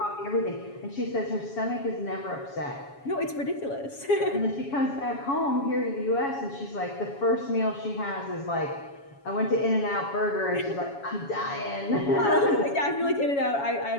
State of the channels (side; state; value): right; late; 7.2 ms